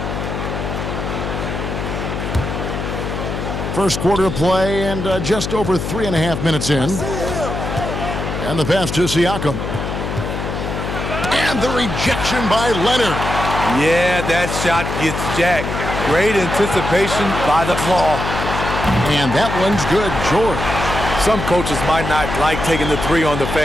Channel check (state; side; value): noise; left; hum, 4 dB below the sound